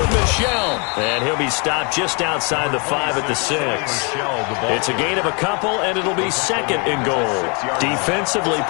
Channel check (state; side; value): quieter; right; 33.9 dB